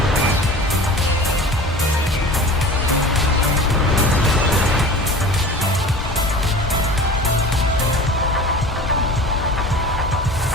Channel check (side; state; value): both; normal; correlation 0.38